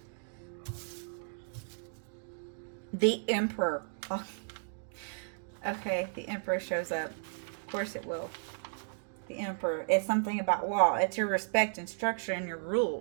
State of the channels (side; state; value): left; silent; digital silence